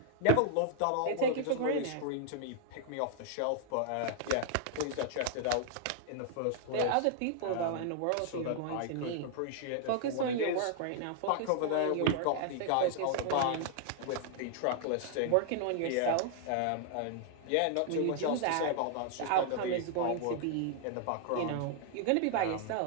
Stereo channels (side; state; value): both; different; correlation 0.00